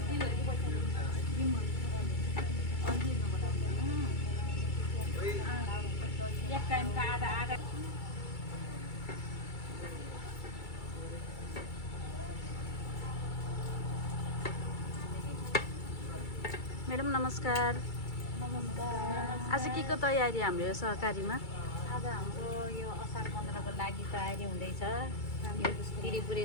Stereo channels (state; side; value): late; right; 2.3 ms